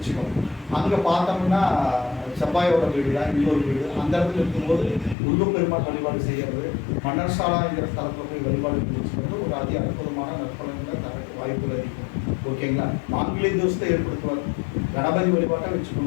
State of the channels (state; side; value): drops out; right; at 5.2 s